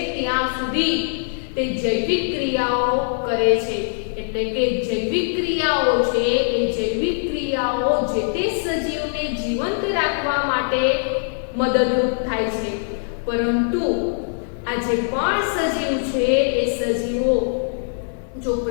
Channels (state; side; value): silent; right; digital silence